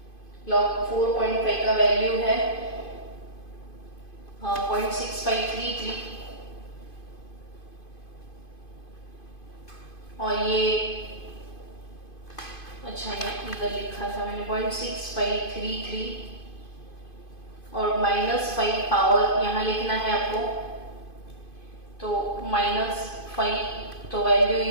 log 4.5 का वैल्यू है 0.6533। और ये अच्छा है, इधर लिखा था मैंने 0.6533 और -5 पावर यहाँ लिखना है आपको, तो -5 तो वैल्यू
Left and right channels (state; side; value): late; right; 2.5 ms